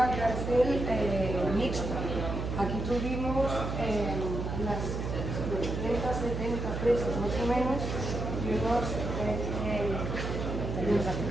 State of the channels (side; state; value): right; noise; hum, 3 dB below the sound